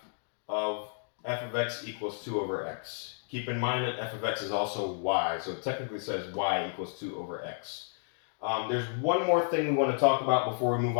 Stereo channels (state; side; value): silent; right; digital silence